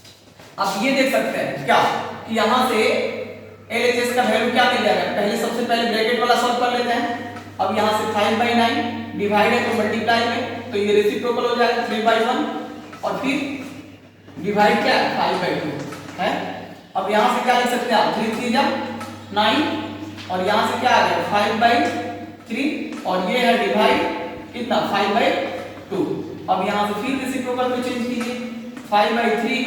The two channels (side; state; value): both; identical; correlation 1.00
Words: आप ये देख सकते हैं क्या कि यहां से LHS का वैल्यू क्या मिल जाएगा, पहले सबसे पहले ब्रैकेट वाला सॉल्व कर लेते हैं। अब यहां से 5/9 डिवाइड है तो मल्टीप्लाई में, तो ये रेसिप्रोकल हो जाएगा 3/1 और फिर डिवाइड क्या 5/2 है। अब यहां से क्या लिख सकते हैं आप, 3 3 जा 9 और यहां से क्या आ गया 5/3 और ये है डिवाइड कितना 5/2। अब यहां से फिर रेसिप्रोकल में चेंज कीजिए, 5/3